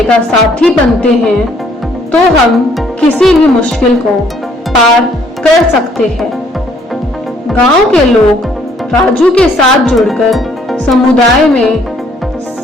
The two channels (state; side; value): normal; both; correlation 0.64